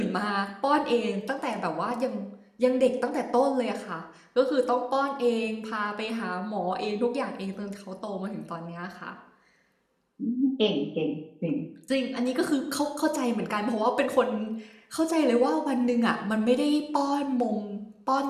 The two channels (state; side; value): identical; both; correlation 1.00